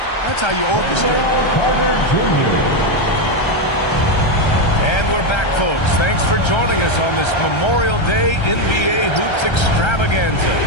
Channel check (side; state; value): right; late; 1.3 ms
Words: That's how you orchestrate. And we're back, folks. Thanks for joining us on this Memorial Day NBA Hoops extravaganza.